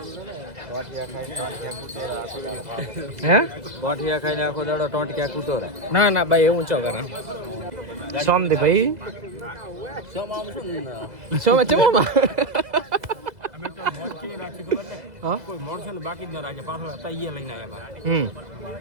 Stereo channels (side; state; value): left; late; 2.0 ms